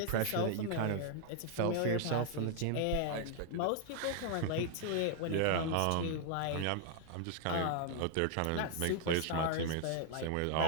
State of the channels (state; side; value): different; both; correlation 0.00